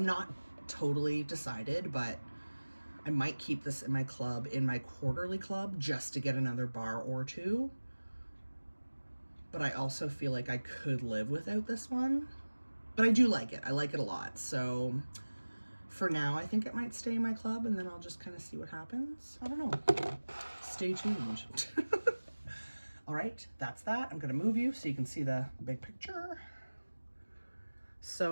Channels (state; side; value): inverted; both; correlation -1.00